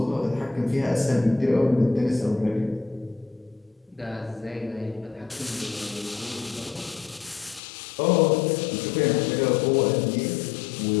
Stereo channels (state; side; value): drops out; right; at 7.6 s